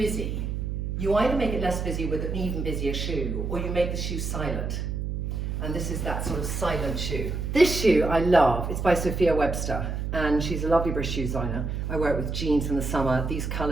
you either make it less busy with an even busier shoe, or you make the shoe silent. And this is that sort of silent shoe. This shoe I love. It's by Sophia Webster, and she's a lovely British shoe designer. I wear it with jeans in the summer. These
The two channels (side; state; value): right; noise; hum, 3 dB below the sound